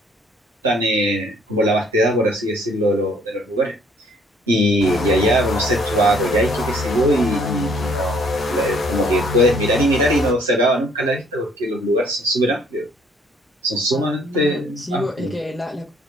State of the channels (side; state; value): both; normal; correlation 0.62